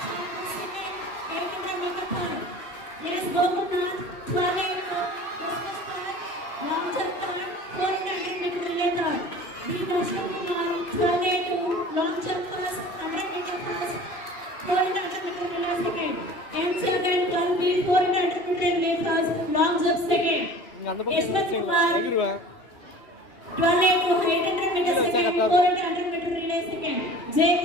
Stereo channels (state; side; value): late; right; 2.6 ms